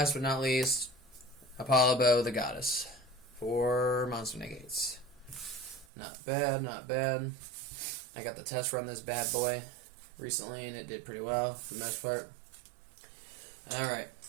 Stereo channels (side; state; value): left; drops out; at 5.9 s